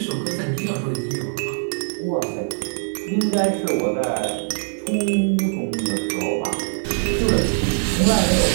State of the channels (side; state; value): left; silent; digital silence